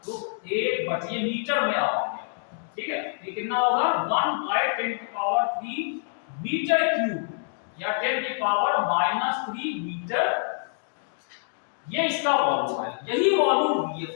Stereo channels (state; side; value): silent; right; digital silence